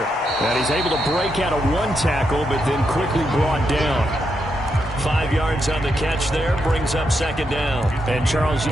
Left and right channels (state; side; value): normal; both; correlation 0.82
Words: And he's able to break out of one tackle, but then quickly brought down. 5 yards on the catch there, brings up second down. And, Charles,